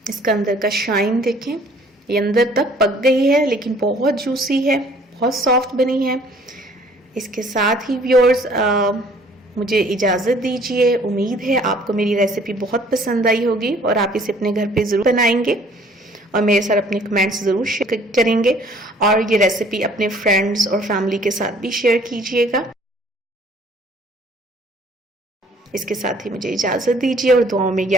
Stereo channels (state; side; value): normal; both; correlation 0.56